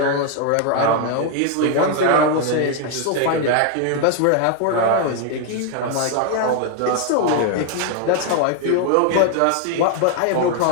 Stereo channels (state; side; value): different; both; correlation 0.00